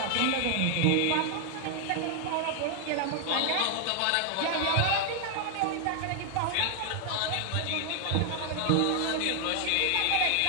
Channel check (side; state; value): both; different; correlation 0.00